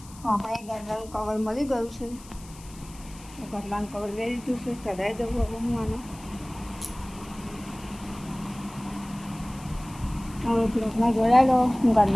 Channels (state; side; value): noise; left; hiss, 20 dB below the sound